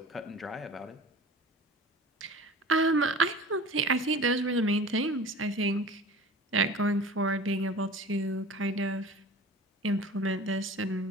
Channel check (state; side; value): normal; both; correlation 0.40